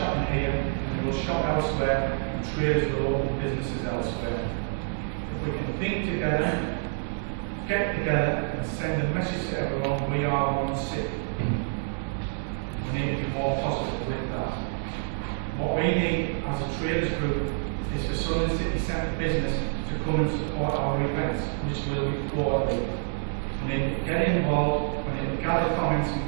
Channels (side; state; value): left; silent; digital silence